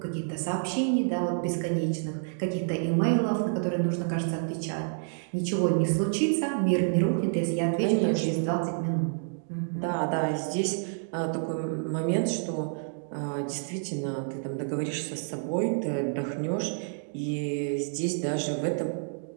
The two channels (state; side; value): silent; left; digital silence